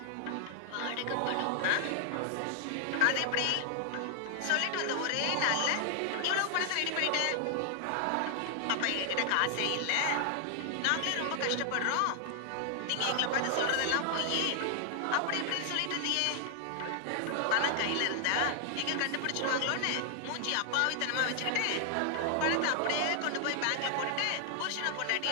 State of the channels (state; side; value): different; both; correlation 0.00